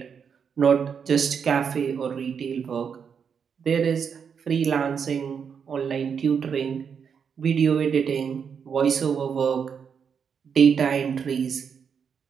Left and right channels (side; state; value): left; quieter; 6.8 dB